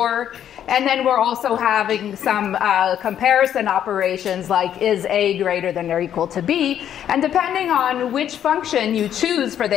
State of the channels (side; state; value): right; quieter; 10.0 dB